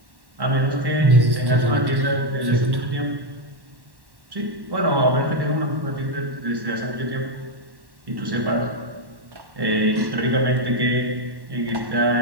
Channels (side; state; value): left; late; 1.1 ms